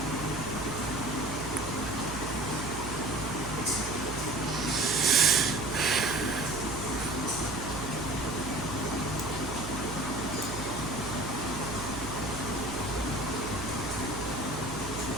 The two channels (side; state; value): right; noise; hum, 9 dB below the sound